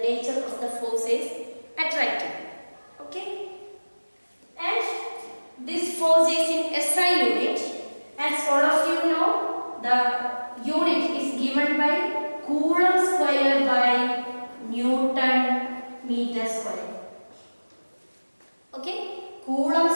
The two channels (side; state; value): both; inverted; correlation -1.00